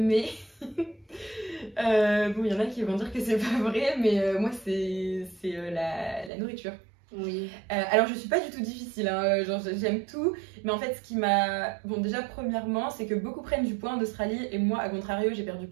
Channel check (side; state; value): left; drops out; at 6.3 s